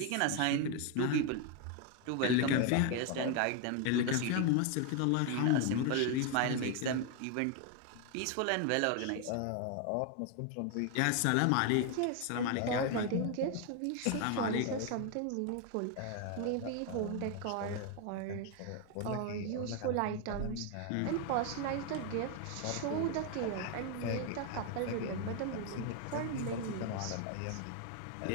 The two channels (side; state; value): both; different; correlation 0.01